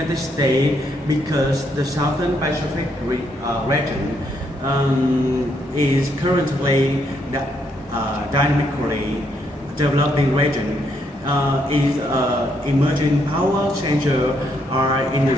States because the Southern Pacific region is currently the dynamically developing region, is emerging power changer in the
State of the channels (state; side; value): normal; both; correlation 0.74